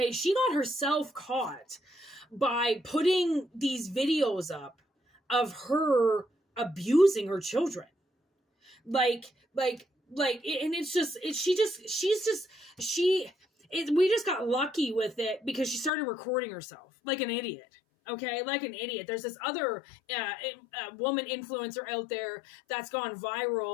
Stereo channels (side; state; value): right; drops out; at 15.9 s